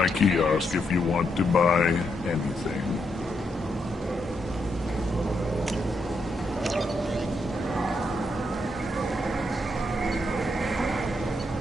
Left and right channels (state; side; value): normal; both; correlation 0.80